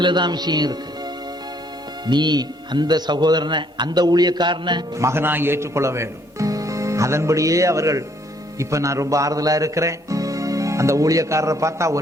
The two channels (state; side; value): normal; both; correlation 0.66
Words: விஷயம் இருக்கு. நீ அந்த சகோதரனை, அந்த ஊழியக்காரனை மகனாய் ஏற்றுக்கொள்ள வேண்டும். அதன்படியே அவர்கள், இப்ப நான் ரொம்ப ஆறுதலா இருக்கிறேன், அந்த ஊழியக்காரரை பார்த்தா